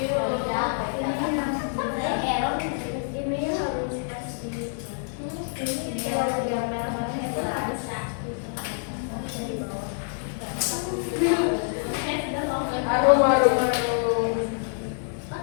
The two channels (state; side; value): silent; right; digital silence